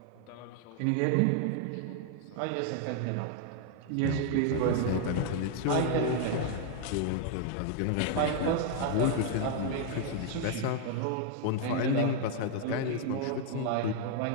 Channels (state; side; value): different; both; correlation 0.00